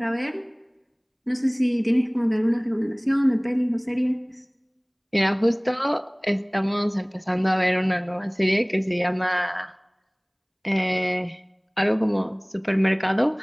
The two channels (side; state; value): both; identical; correlation 1.00